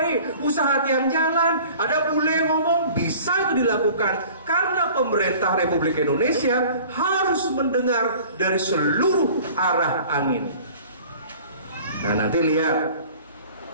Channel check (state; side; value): inverted; both; correlation -0.46